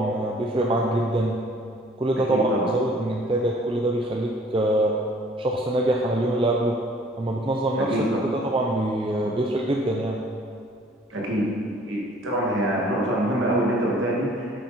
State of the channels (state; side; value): normal; both; correlation 0.55